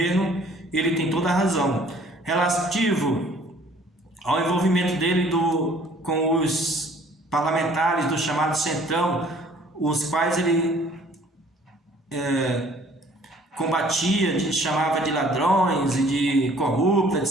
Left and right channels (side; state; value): both; normal; correlation 0.56